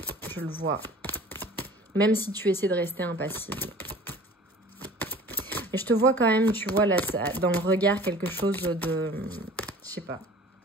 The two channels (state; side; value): normal; both; correlation 0.45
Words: Je le vois. Même si tu essaies de rester impassible. Et je te vois quand même, tu vois, là, dans le regard, quelque chose de... Je sais pas.